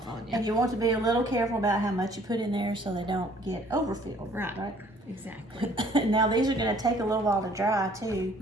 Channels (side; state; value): both; normal; correlation 0.58